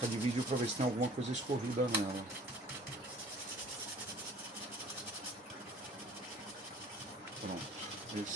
de vídeo para ver se tem alguma coisa escorrida nela. Pronto.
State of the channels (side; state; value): both; normal; correlation 0.50